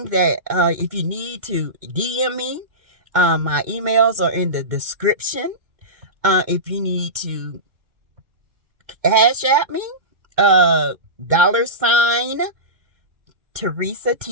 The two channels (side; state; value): left; late; 2.2 ms